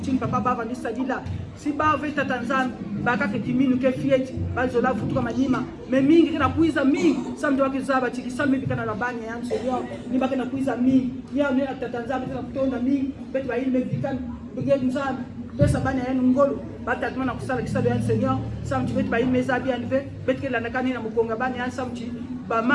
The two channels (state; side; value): identical; both; correlation 1.00